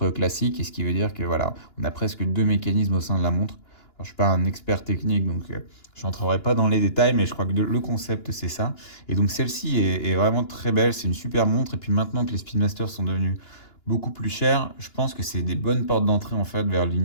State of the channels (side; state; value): right; late; 2.9 ms